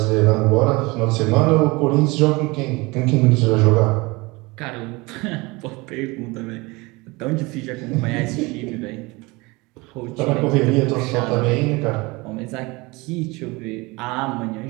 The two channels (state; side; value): quieter; left; 24.1 dB